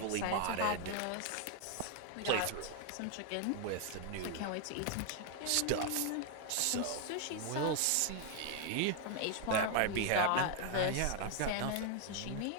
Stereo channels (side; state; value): both; different; correlation 0.00